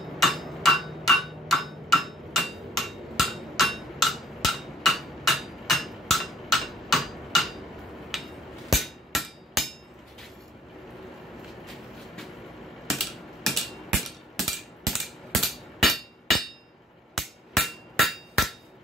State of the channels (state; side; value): normal; both; correlation 0.60